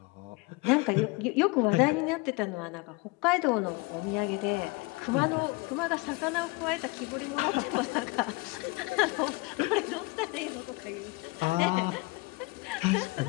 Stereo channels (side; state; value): right; quieter; 25.9 dB